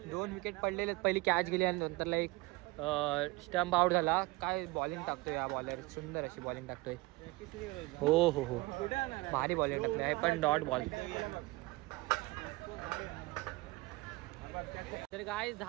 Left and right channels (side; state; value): left; quieter; 21.9 dB